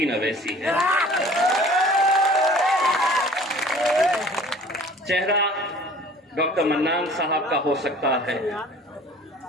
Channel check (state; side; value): normal; both; correlation 0.48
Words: अवैसी है। चेहरा डॉक्टर मन्नान साहब का हो सकता है,